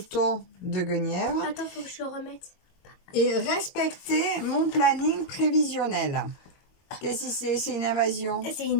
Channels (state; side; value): late; right; 22 ms